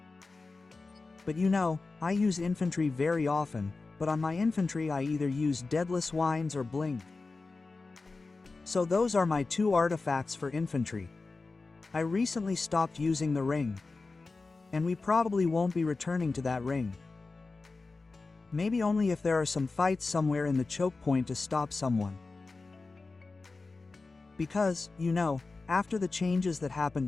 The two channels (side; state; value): right; quieter; 3.8 dB